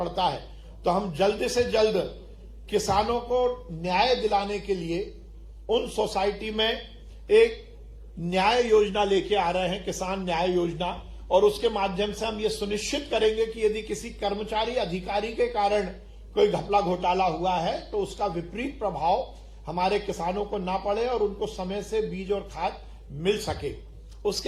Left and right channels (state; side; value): identical; both; correlation 1.00